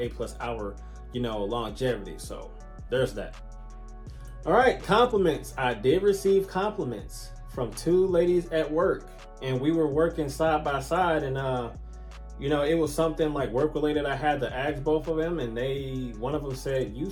8 plus hour, longevity. So there's that. All right, compliments. I did receive compliments from 2 ladies at work, and we were working side by side, and it was something like work related. I had to ask both of them, and one of them said, "You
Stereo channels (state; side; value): identical; both; correlation 1.00